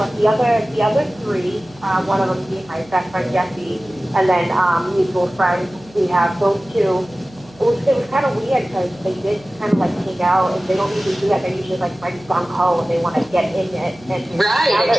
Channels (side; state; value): right; noise; hum, 25 dB below the sound